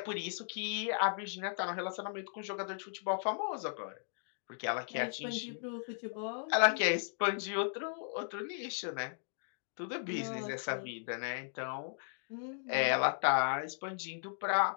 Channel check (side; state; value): right; silent; digital silence